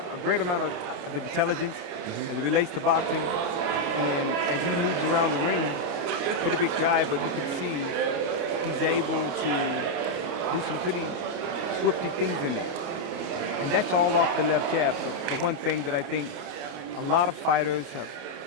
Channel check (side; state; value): left; late; 29 ms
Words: great amount of intelligence as it relates to boxing. And as he moves around the ring, pretty big guy, but you can see he's able to do some pretty swifty things in there. And that's all off the left jab. The one thing that I think a lot of fighters have